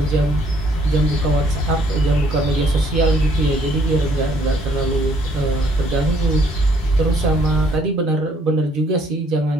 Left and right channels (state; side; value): normal; both; correlation 0.64